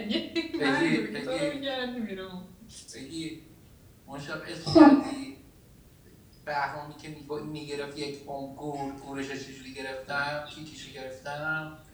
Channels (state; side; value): identical; both; correlation 1.00